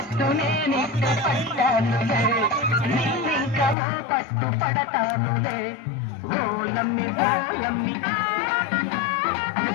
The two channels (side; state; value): right; drops out; at 3.8 s